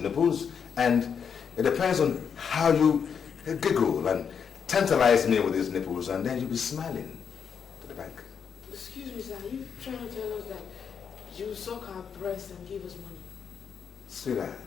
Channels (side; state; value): right; quieter; 7.0 dB